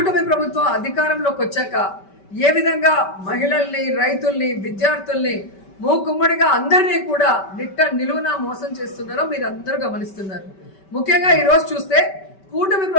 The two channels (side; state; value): right; late; 5.2 ms